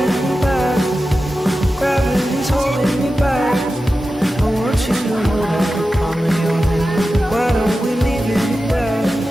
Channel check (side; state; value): both; normal; correlation 0.93